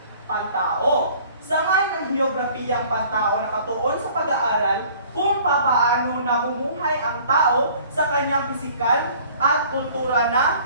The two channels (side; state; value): both; inverted; correlation -0.52